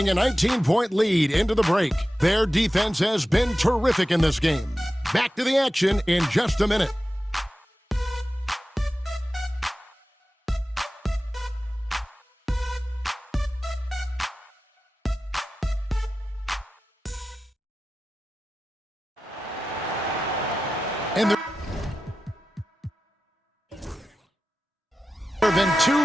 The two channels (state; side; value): normal; both; correlation 0.94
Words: a 19-point lead into the break. Their defense has been terrific in this game. Back to the action in just a minute. And there have been 2